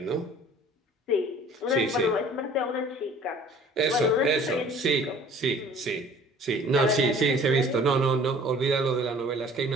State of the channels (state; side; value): normal; both; correlation 0.50